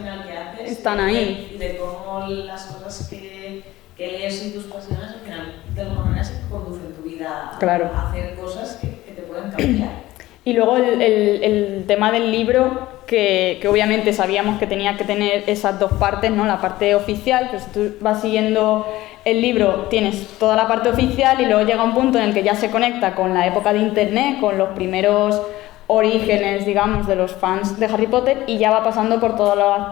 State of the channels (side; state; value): right; quieter; 16.9 dB